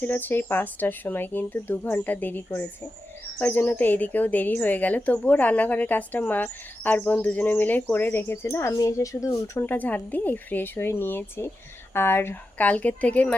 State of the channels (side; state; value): both; normal; correlation 0.91